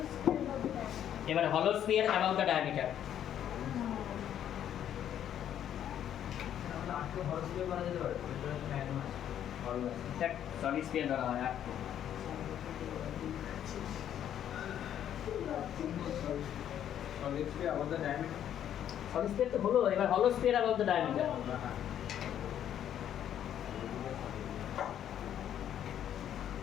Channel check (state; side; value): quieter; right; 10.3 dB